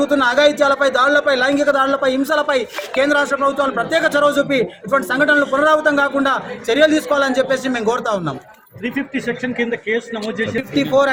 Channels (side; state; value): both; identical; correlation 1.00